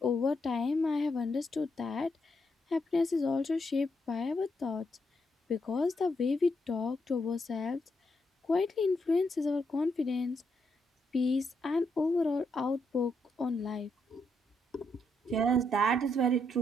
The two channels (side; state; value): both; normal; correlation 0.79